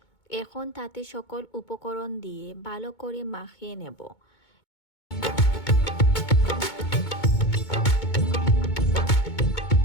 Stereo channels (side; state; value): right; late; 2.2 ms